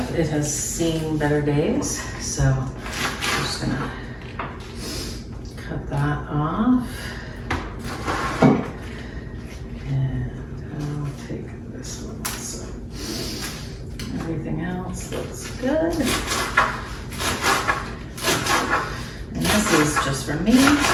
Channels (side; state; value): both; identical; correlation 1.00